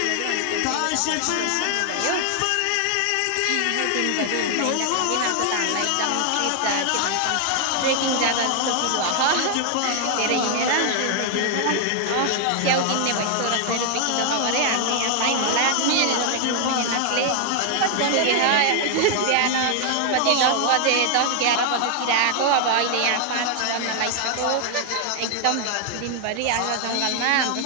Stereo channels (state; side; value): different; both; correlation 0.00